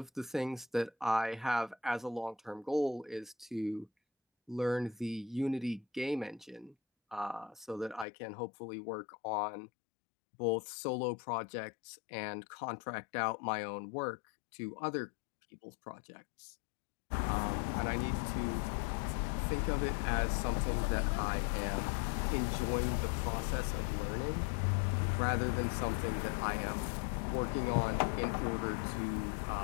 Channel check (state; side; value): drops out; right; at 8.1 s